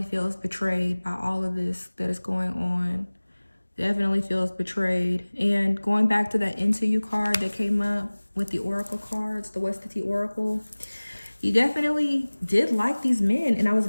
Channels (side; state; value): both; inverted; correlation -1.00